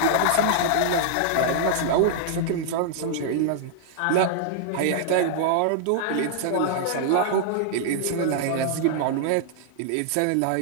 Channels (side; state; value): both; different; correlation -0.01